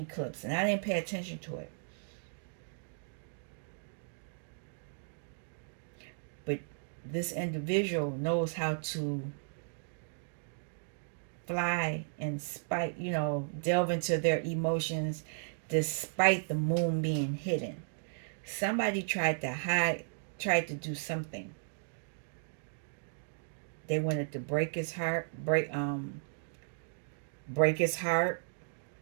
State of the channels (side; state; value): left; silent; digital silence